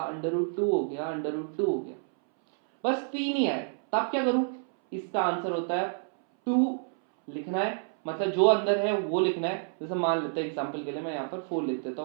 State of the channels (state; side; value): silent; left; 59 dB below the other